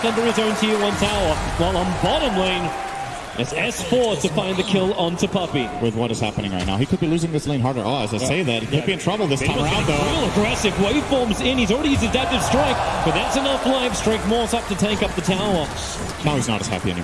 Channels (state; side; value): identical; both; correlation 1.00